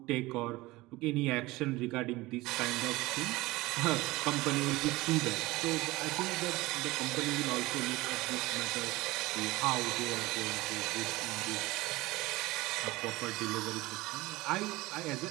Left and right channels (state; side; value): quieter; left; 20.1 dB